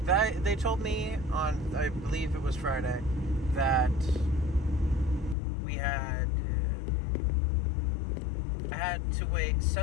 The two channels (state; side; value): drops out; right; at 5.4 s